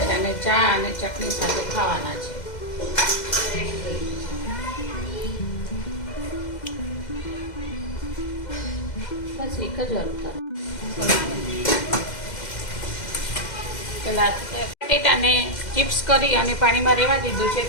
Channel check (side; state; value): right; late; 2.0 ms